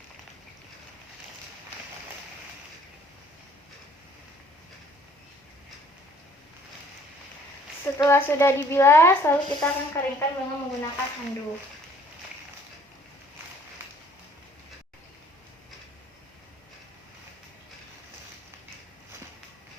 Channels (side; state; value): both; normal; correlation 0.58